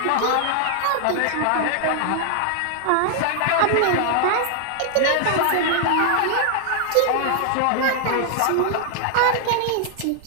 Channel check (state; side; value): different; both; correlation 0.00